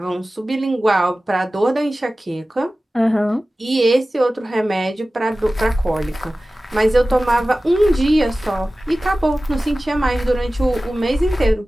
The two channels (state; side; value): normal; both; correlation 0.96